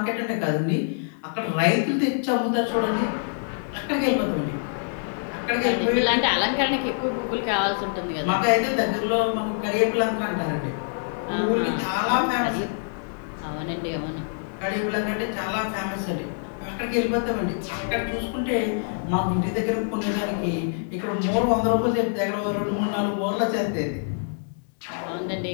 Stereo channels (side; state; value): right; silent; digital silence